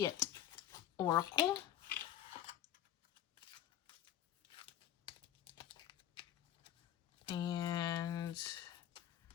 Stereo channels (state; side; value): quieter; right; 11.3 dB